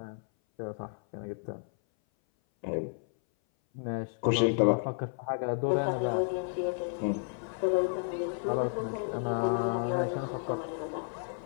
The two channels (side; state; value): right; silent; 57 dB below the other